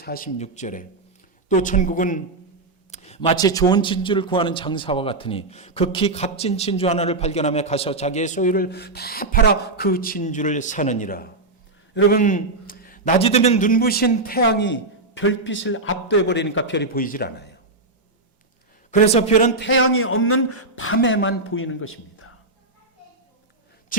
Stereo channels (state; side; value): quieter; left; 3.2 dB